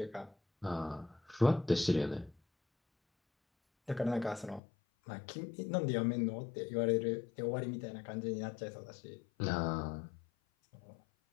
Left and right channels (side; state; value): right; drops out; at 4.6 s